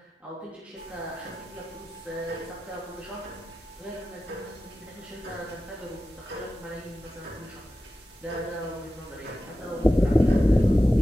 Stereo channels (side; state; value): both; normal; correlation 0.93